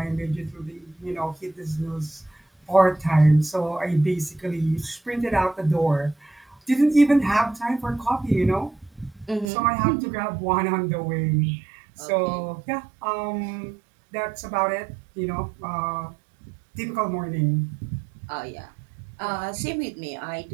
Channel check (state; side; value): drops out; left; at 9.5 s